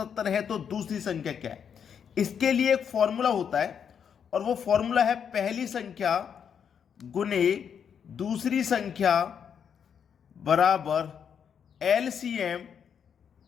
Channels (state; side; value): quieter; right; 7.6 dB